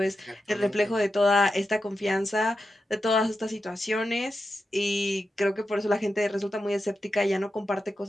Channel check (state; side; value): normal; both; correlation 0.89